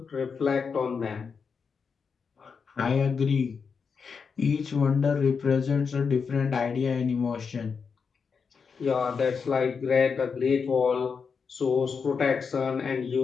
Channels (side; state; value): right; quieter; 5.7 dB